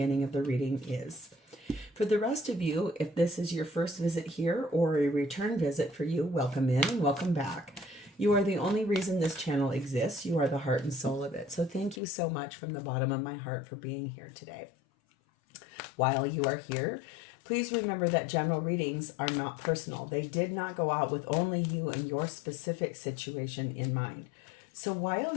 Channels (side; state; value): right; drops out; at 12.0 s